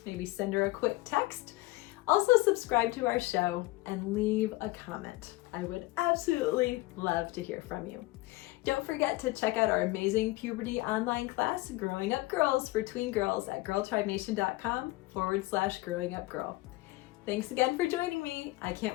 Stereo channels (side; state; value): right; quieter; 20.1 dB